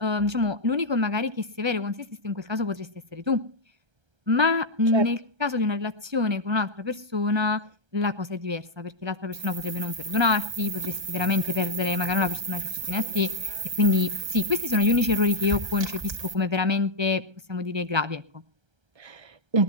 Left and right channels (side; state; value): left; late; 1.3 ms